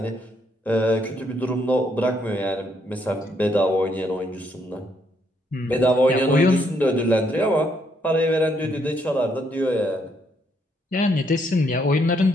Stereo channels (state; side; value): normal; both; correlation 0.72